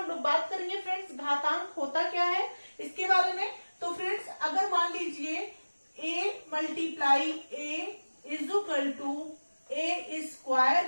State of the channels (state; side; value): inverted; both; correlation -1.00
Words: लोग बात करेंगे फ्रेंड्स, घातांक होता क्या है इसके बारे में। तो फ्रेंड्स, अगर मान लीजिए a multiply a is equal to a square